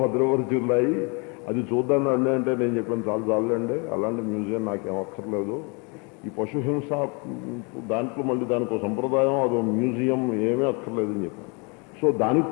భద్రపరిచి ఉన్నాయి. అది చూద్దాం రండి అంటే నేను చెప్పాను చాలండి, అలాంటి మ్యూజియం నాకేం అక్కర్లేదు. ఈ పశుహింస దాంట్లో మళ్ళీ దానికి ఒక సంప్రదాయం, అదో మ్యూజియం ఏమీ అక్కర్లేదు అని చెప్పాను. సో దానికి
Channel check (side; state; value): right; quieter; 32.3 dB